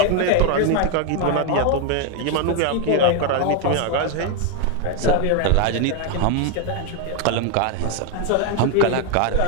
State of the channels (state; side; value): different; both; correlation 0.01